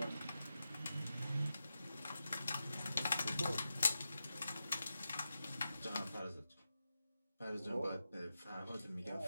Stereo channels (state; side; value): inverted; both; correlation -0.90